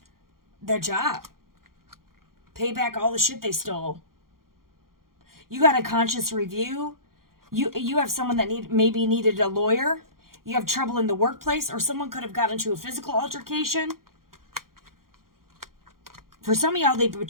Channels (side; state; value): left; late; 0.92 ms